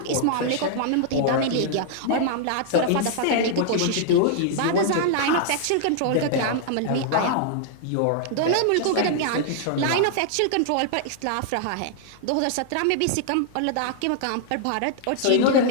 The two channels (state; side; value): different; both; correlation -0.01